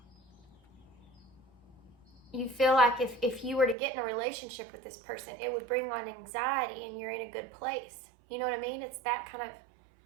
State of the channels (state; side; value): drops out; left; at 3.8 s